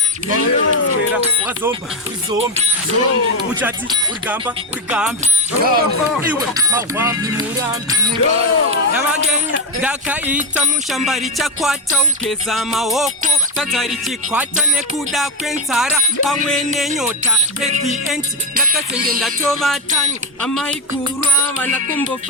Swera, wazomba, uzombi. Uchati, urigambi. Iwe, mawambi, murambi. Yamagenya, dakaita mushambari chakwata ukeza maoko. Tatari chikwata nekuda kwenzara pamwe nenyota. At the end, ndakasenge ndatova tani. Amaikurwa,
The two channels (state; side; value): normal; both; correlation 0.10